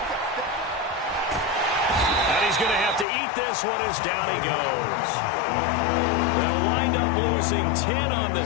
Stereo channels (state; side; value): drops out; right; at 3.1 s